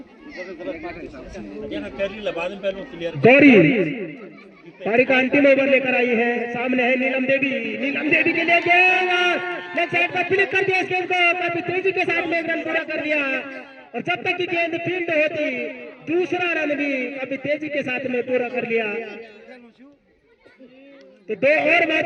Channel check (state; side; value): identical; both; correlation 1.00